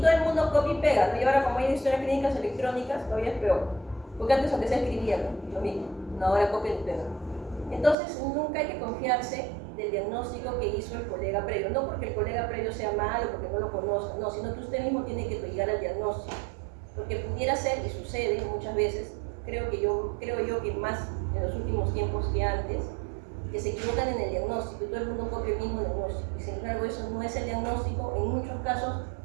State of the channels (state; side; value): drops out; left; at 8.0 s